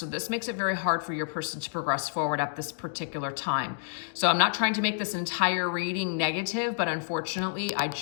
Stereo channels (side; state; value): right; silent; digital silence